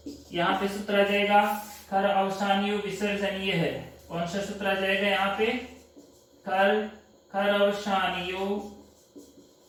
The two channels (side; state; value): both; identical; correlation 1.00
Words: यहाँ पे सूत्र आ जाएगा खर अवसानियो विसर्जनीय है, कौन सा सूत्र आ जाएगा यहाँ पे, खर अवसानियो